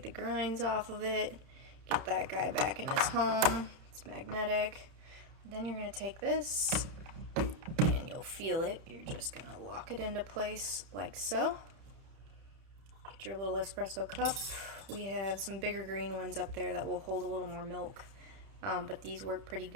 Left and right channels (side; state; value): left; late; 31 ms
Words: the grinds off of it, get that guy back in his home. It's magnetic. Then you're going to take this, and you'll feel it. You're just going to lock it into place like so. Get your little espresso cup. We have some bigger green ones up there that will hold a little more milk, but these work pretty